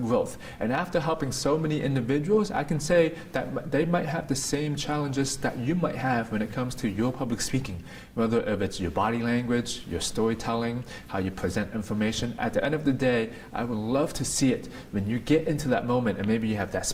And after helping so many individuals, I can say that they might have the same challenges that you might have when it comes to your public speaking. Whether if it's your body language, your storytelling, how you present information. At the end of the day, I would love to see it when you get into that moment and maybe you have that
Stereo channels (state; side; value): identical; both; correlation 1.00